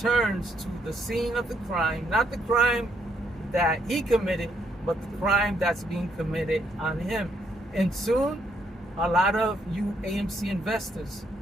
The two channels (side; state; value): both; normal; correlation 0.73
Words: to the scene of the crime. Not the crime that he committed, but the crime that's being committed on him. And soon, a lot of you AMC investors